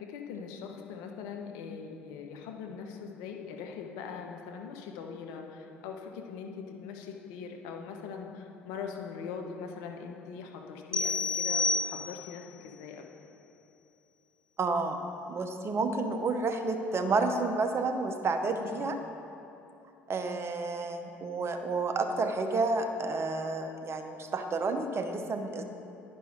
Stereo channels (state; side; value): normal; both; correlation 0.53